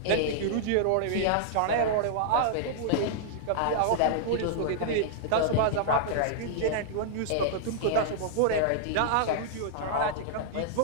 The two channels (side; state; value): both; different; correlation -0.01